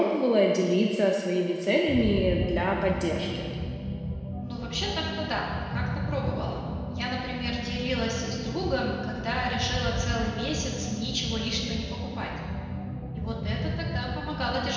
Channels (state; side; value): identical; both; correlation 1.00